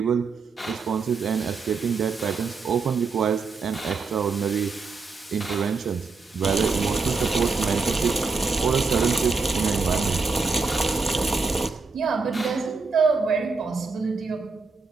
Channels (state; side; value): quieter; left; 4.5 dB